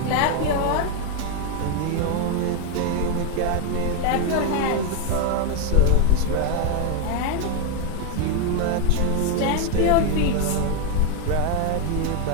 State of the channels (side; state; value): both; different; correlation 0.01